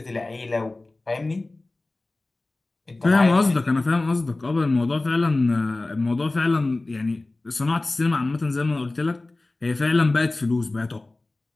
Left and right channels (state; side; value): quieter; right; 3.0 dB